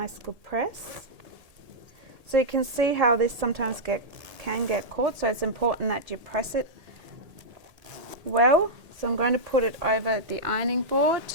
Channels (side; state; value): left; late; 1.8 ms